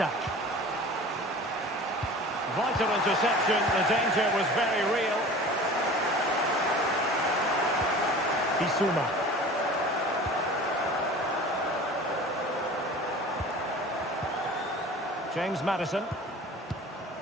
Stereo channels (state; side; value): normal; both; correlation 0.41